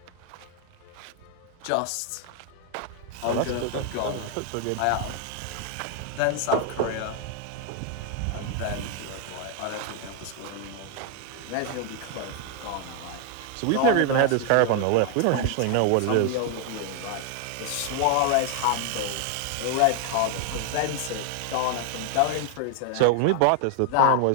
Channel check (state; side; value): different; both; correlation 0.00